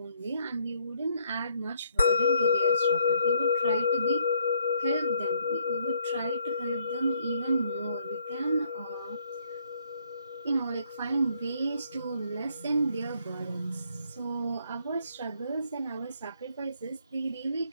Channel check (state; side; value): inverted; both; correlation -0.69